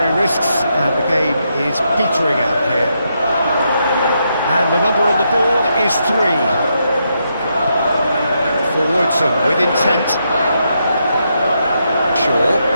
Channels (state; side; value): inverted; both; correlation -0.80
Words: risks, and the game is petering out here. And the number on the board is 3. Forwards and with intent. Shaw.